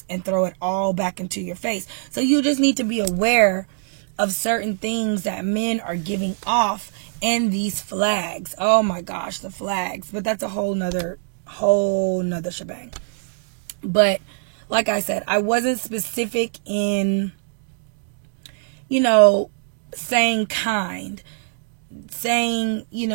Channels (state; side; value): silent; left; 64 dB below the other